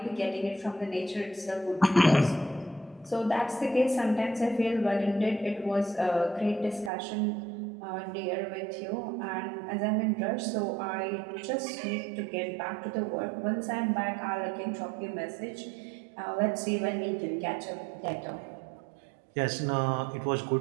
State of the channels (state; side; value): drops out; left; at 6.9 s